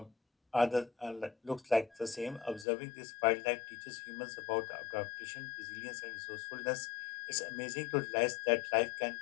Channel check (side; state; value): right; drops out; at 2.7 s